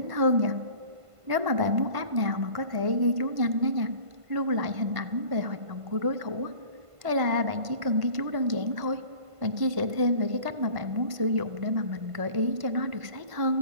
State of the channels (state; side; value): late; left; 1.5 ms